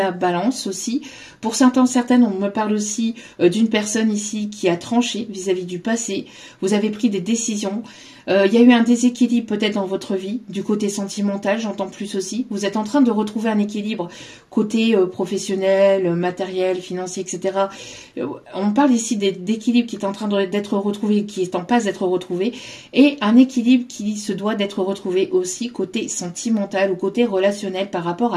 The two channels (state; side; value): identical; both; correlation 1.00